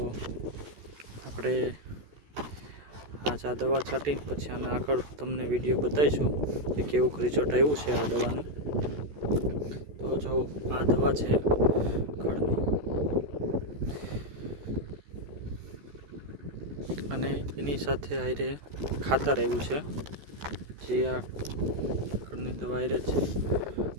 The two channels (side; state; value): left; late; 14 ms